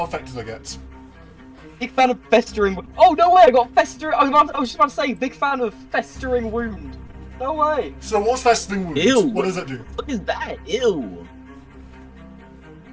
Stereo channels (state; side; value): identical; both; correlation 1.00